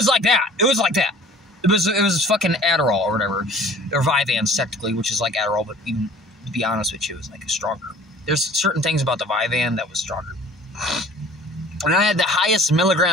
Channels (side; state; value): both; normal; correlation 0.48